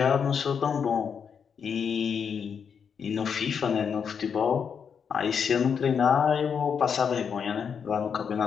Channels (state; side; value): quieter; right; 6.9 dB